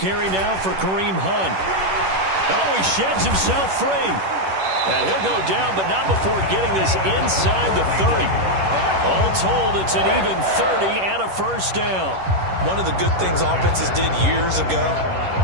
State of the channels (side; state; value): left; late; 11 ms